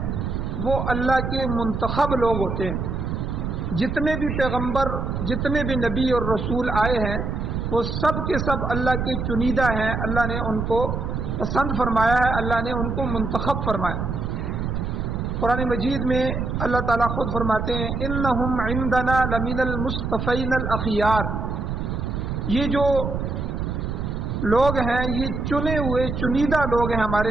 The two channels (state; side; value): noise; right; rumble, 2 dB below the sound